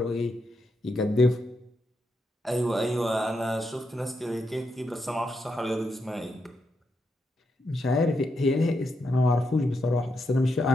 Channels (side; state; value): both; normal; correlation 0.82